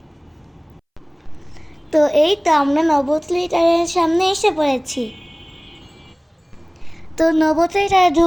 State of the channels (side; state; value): both; identical; correlation 1.00